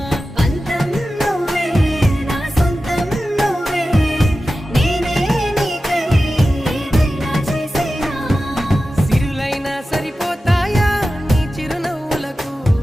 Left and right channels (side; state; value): both; normal; correlation 0.94